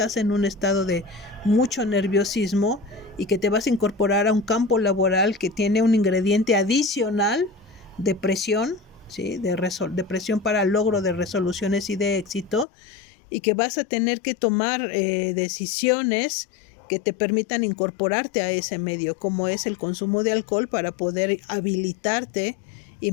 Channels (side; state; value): right; drops out; at 12.7 s